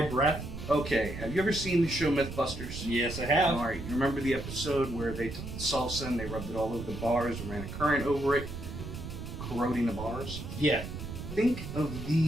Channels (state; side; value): noise; right; rumble, 8 dB below the sound